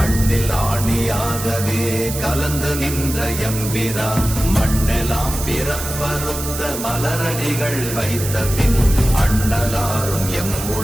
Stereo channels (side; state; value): right; noise; hiss, 7 dB below the sound